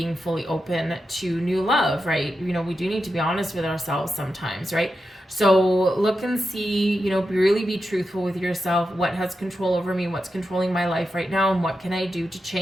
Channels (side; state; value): both; normal; correlation 0.89